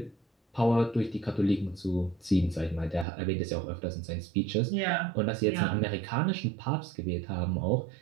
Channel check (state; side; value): drops out; left; at 3.1 s